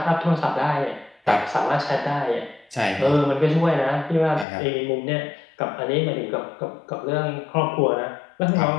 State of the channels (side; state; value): right; drops out; at 4.5 s